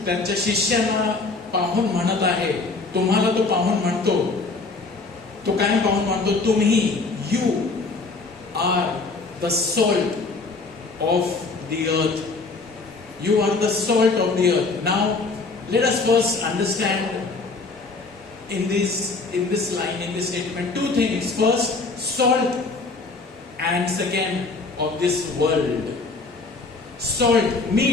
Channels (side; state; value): right; quieter; 3.8 dB